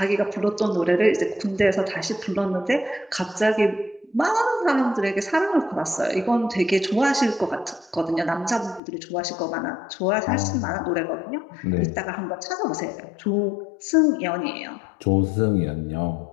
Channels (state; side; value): drops out; right; at 8.8 s